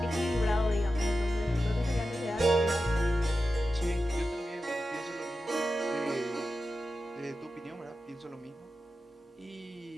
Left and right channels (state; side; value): normal; both; correlation 0.91